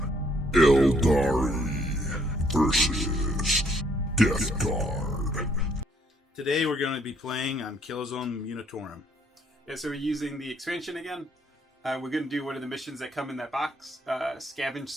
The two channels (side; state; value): both; normal; correlation 0.67